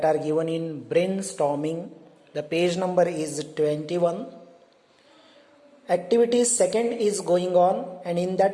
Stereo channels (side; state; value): both; identical; correlation 1.00